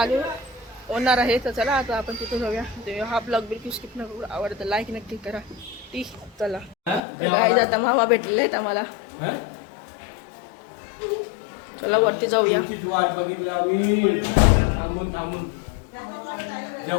होणार आहे. तर चला आता आपण तिथं जाऊया. ते हा ब्लॉग बिलकुल स्किप न करू. आवडतं लाईक नक्की करा. ती चला गाईज आता मावा भेटलेले आहेत आम्हाला. चला वरती जाऊया.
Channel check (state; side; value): drops out; right; at 7.0 s